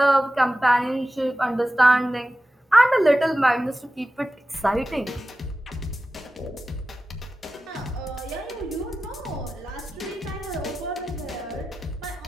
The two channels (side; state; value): both; normal; correlation 0.94